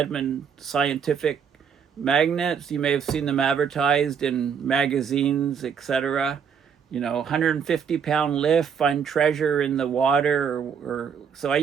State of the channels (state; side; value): quieter; left; 7.1 dB